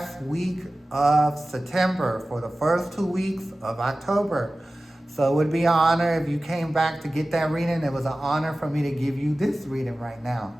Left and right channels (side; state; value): both; normal; correlation 0.96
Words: week of September for the first 2 weeks of October. So it would be an honor if you came back to get that reading. It was an honor for me to give you this reading right now.